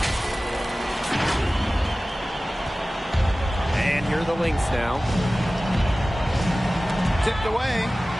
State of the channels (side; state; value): both; normal; correlation 0.97